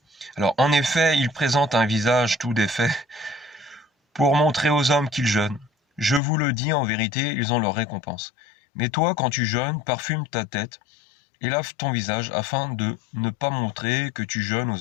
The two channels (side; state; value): right; drops out; at 6.2 s